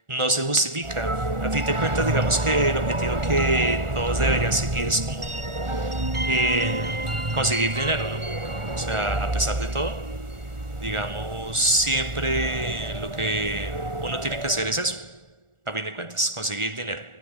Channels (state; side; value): late; left; 1.4 ms